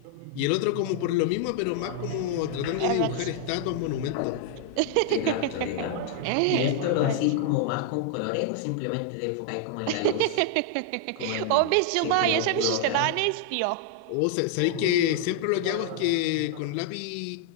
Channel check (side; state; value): both; different; correlation -0.01